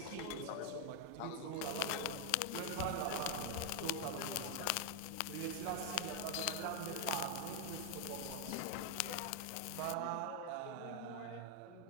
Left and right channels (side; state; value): both; different; correlation 0.00